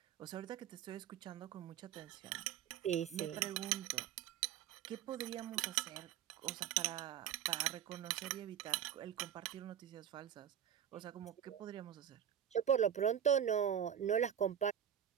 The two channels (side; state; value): left; quieter; 9.6 dB